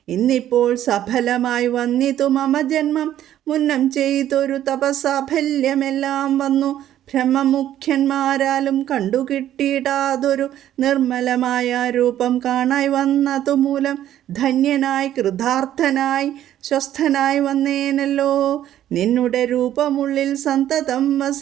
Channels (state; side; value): quieter; left; 11.9 dB